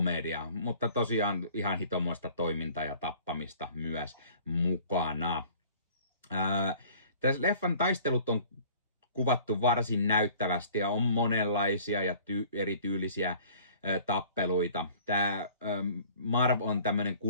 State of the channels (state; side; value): inverted; both; correlation -0.50